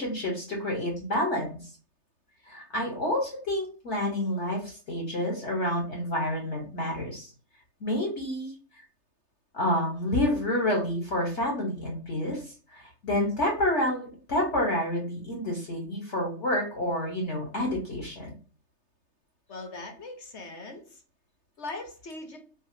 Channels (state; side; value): late; right; 3.3 ms